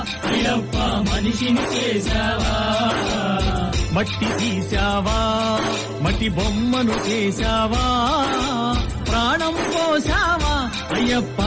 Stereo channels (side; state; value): both; identical; correlation 1.00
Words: అయ్యప్ప మనిషిని చేశావా మట్టి తీశావా మట్టి బొమ్మను చేశావా ప్రాణం పోసావా అయ్యప్ప